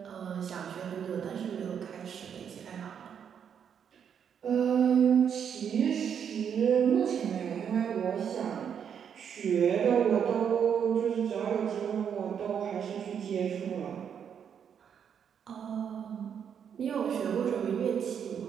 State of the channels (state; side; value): quieter; left; 7.9 dB